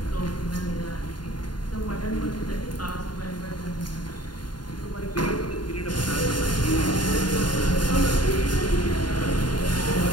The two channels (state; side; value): late; right; 0.71 ms